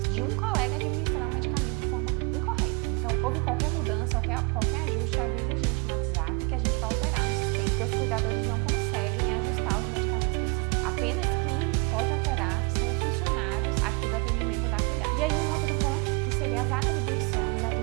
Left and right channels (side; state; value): left; quieter; 31.5 dB